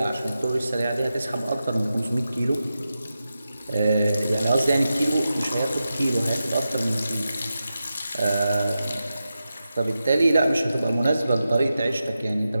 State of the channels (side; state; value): both; inverted; correlation -0.91